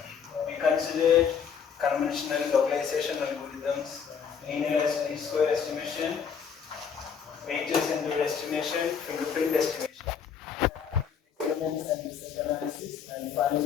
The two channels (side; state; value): right; quieter; 7.0 dB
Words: we considered conventional localization algorithms, linear least square estimation, weighted center estimation, fingerprint estimation, experiments and research analysis, and